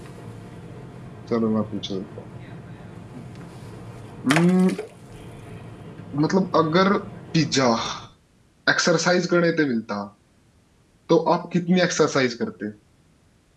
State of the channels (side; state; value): both; identical; correlation 1.00